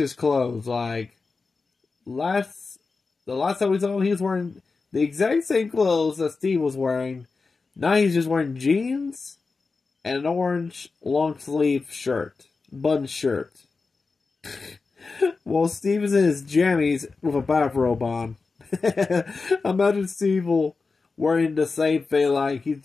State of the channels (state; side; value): quieter; right; 4.3 dB